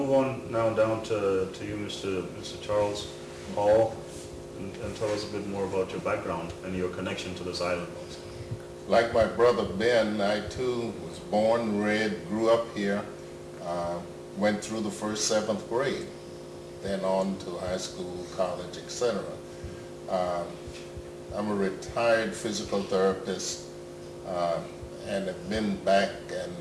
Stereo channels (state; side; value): identical; both; correlation 1.00